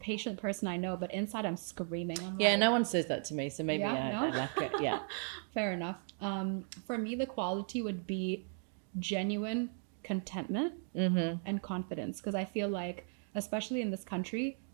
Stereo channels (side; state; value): left; silent; 54 dB below the other